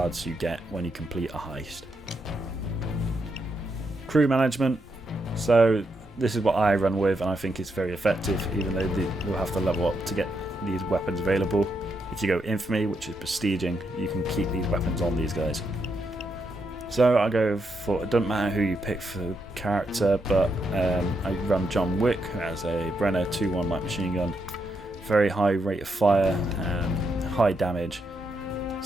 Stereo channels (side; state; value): both; normal; correlation 0.81